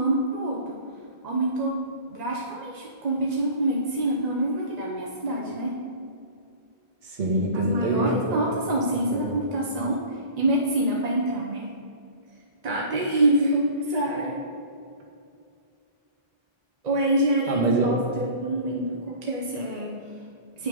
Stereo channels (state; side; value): late; left; 1.9 ms